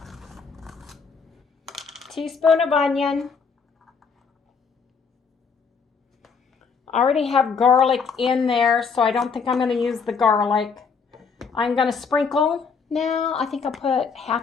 teaspoon of onion. I already have garlic in there, so I don't think I'm going to use the garlic. I'm going to sprinkle. Now, I think I'll put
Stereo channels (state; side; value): quieter; right; 5.5 dB